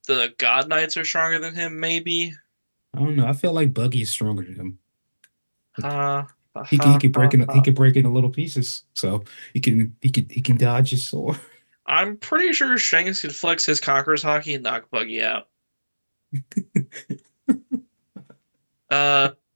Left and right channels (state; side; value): inverted; both; correlation -1.00